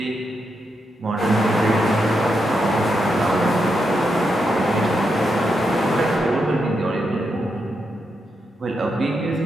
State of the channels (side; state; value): both; normal; correlation 0.84